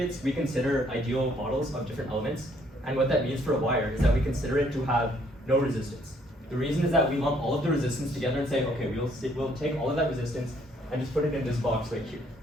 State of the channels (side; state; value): both; normal; correlation 0.66